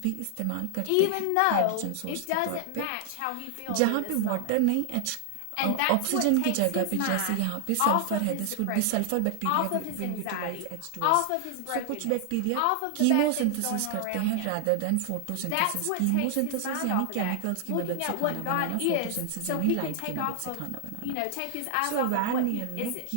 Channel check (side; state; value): both; different; correlation 0.00